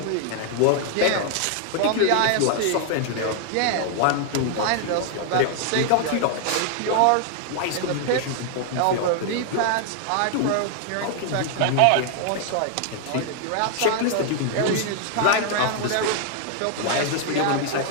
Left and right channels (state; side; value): different; both; correlation 0.00